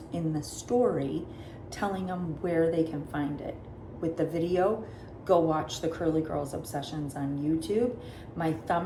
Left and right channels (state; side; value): identical; both; correlation 1.00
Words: in the story telling them where they can find it. With the video, go watch the Curly Girls Obsessions on YouTube. My